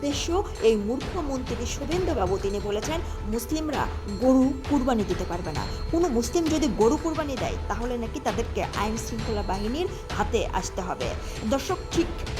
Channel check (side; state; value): both; identical; correlation 1.00